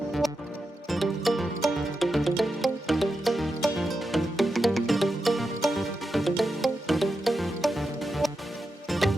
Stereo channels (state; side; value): normal; both; correlation 0.88